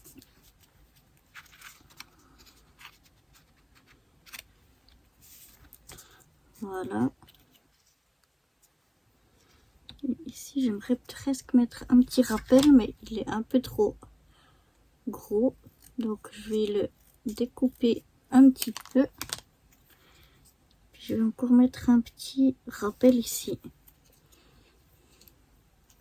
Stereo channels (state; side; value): identical; both; correlation 1.00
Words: Voilà. Et ici, j'aimerais presque mettre un petit rappel, mais il est un peu trop gros. Donc, je vais le découper un petit peu. Je vais encore mettre un petit rappel ici.